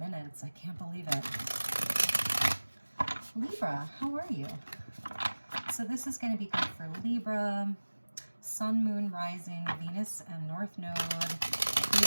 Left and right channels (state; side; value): inverted; both; correlation -1.00